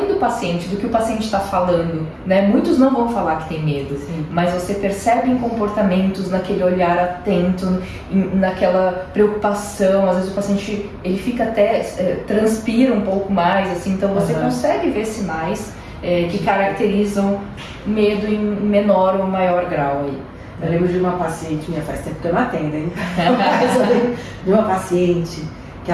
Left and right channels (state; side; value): identical; both; correlation 1.00